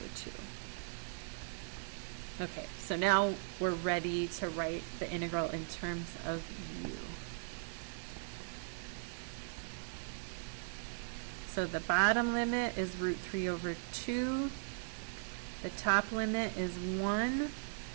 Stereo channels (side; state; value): left; silent; digital silence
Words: 2. Okay, so now we're ready to write the integral in terms of u. So the bottom limit is root 3 over 2. The top limit is 1.